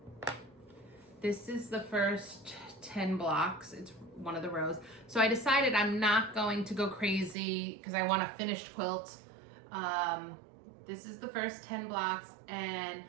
This is the first 10 blocks. It's one of the rows. So I decided I'm not going to go crazy because I want a finished quilt. This is the first 10 blocks, and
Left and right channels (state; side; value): drops out; left; at 7.4 s